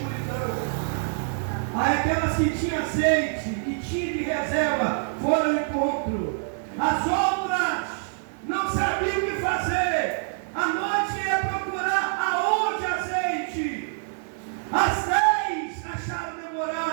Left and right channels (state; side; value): silent; left; 61 dB below the other